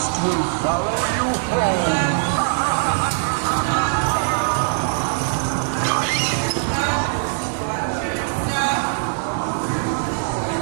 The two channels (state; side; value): silent; left; digital silence